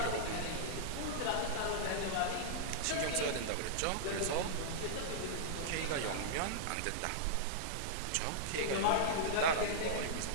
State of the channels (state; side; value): different; both; correlation -0.02